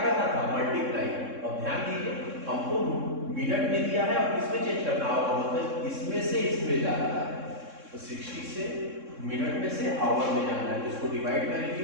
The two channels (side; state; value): left; late; 3.6 ms